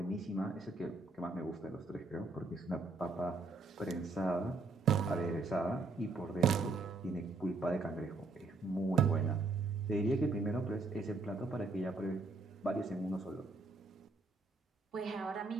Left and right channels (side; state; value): left; quieter; 3.6 dB